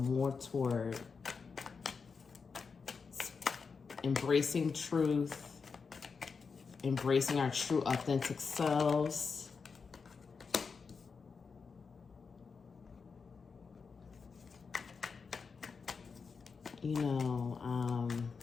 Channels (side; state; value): right; quieter; 5.2 dB